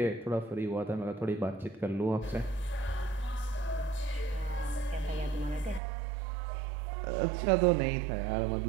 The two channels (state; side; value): drops out; left; at 5.8 s